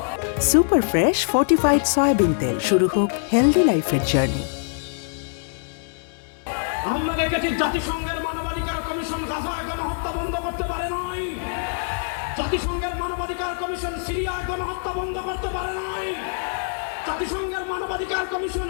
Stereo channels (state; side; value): silent; right; digital silence